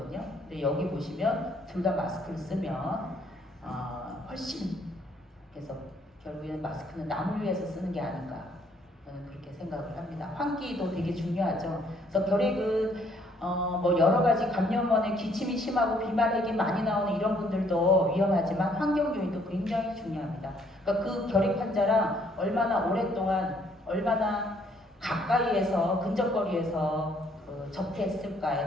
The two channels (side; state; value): both; normal; correlation 0.66